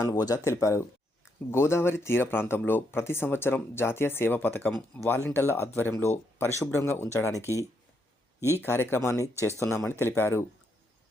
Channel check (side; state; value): both; normal; correlation 0.77